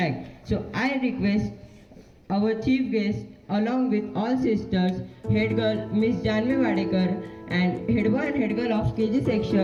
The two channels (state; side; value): identical; both; correlation 1.00